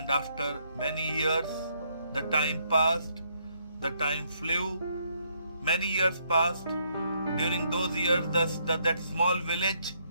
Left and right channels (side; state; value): both; inverted; correlation -0.72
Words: after many years, the time passed, the time flew. Many years passed. During those years, that small village